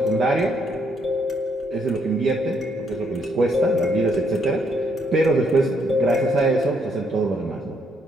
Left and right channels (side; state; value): both; normal; correlation 0.72